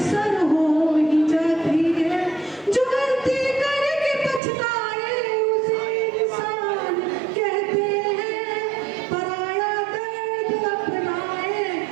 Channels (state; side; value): drops out; left; at 4.4 s